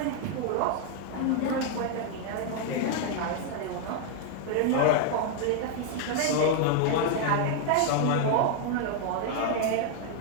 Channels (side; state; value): both; different; correlation 0.00